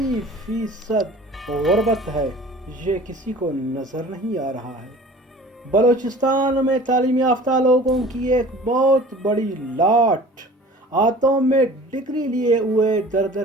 गुर्बत है, ये किसी को नजर नहीं आ रहा है। बलोचिस्तान में तालीम याफ्ता लोगों की एक बहुत बड़ी लाट हाथों में डिग्री लिए हुए दर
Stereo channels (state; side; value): normal; both; correlation 0.45